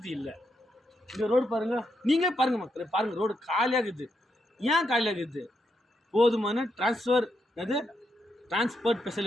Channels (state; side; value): normal; both; correlation 0.81